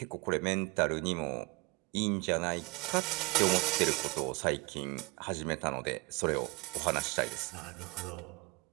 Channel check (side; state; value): left; quieter; 26.8 dB